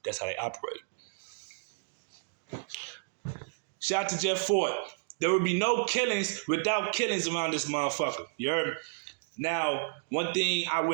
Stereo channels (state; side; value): silent; left; digital silence